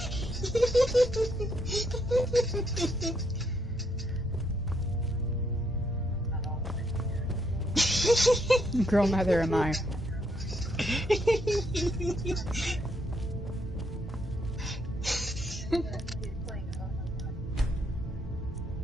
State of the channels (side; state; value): both; normal; correlation 0.74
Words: Girl, neither am I.